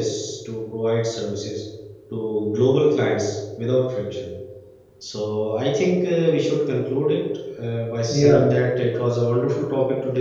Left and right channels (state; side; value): identical; both; correlation 1.00